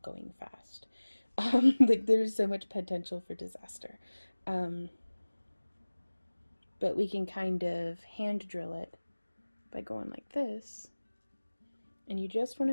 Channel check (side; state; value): both; inverted; correlation -1.00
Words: going fast. Like there's so much potential for disaster. But we can kind of hand drill it by going like this. And you just want